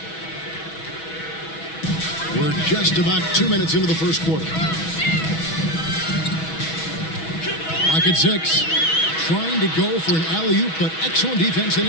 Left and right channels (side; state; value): right; late; 6.2 ms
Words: We're just about 2 minutes into the first quarter. Lock at 6. Trying to go for an alley-oop, but excellent defense and